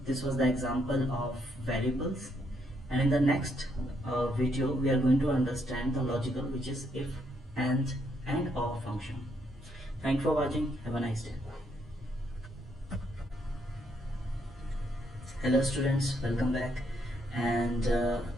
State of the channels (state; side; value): normal; both; correlation 0.74